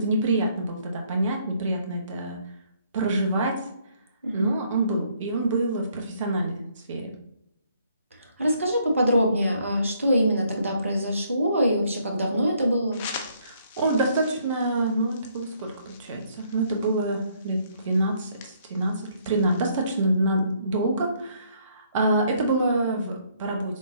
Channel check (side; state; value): both; inverted; correlation -0.67